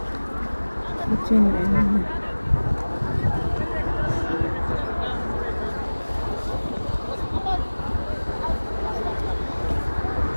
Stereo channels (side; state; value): both; inverted; correlation -1.00